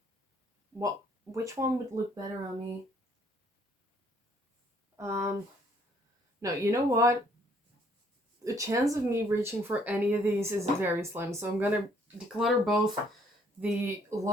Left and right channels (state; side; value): normal; both; correlation 0.64